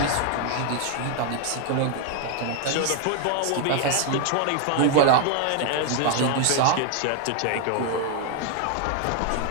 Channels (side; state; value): both; different; correlation 0.00